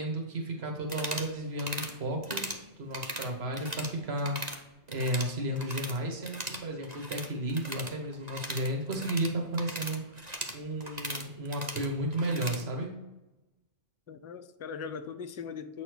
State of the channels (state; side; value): late; left; 1.9 ms